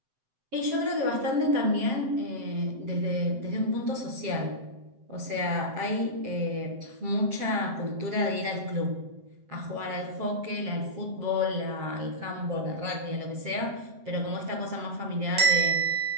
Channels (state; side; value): late; left; 7.7 ms